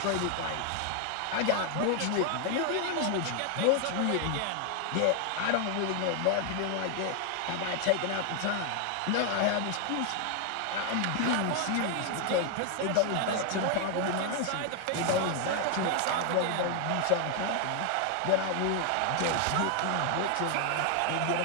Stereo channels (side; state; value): both; different; correlation 0.00